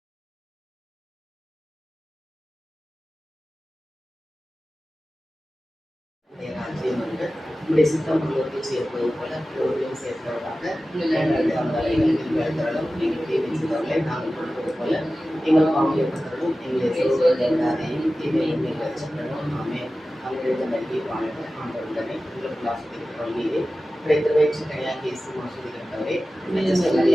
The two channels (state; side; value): normal; both; correlation 0.95